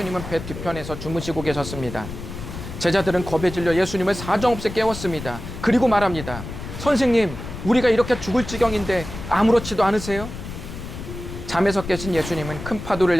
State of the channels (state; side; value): noise; left; rumble, 10 dB below the sound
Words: 배 뒤편에서 주무시고 계셨습니다. 제자들은 겁에 질려 예수님을 사정없이 깨웠습니다. 그리고 말합니다. 선생님, 우리가 이렇게 죽을 지경인데 아무렇지도 않으세요? 잠에서 깨신 예수님은 큰 파도를